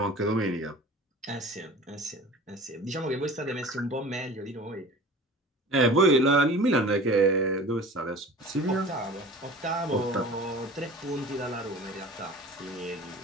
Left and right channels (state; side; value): normal; both; correlation 0.40